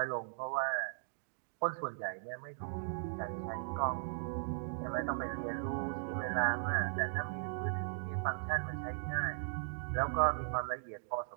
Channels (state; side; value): silent; left; digital silence